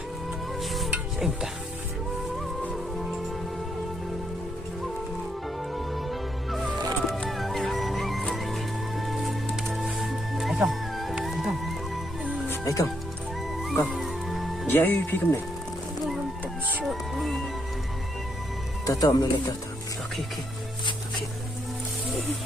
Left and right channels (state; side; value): normal; both; correlation 0.76